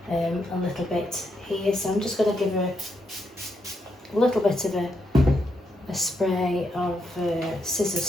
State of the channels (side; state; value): both; normal; correlation 0.80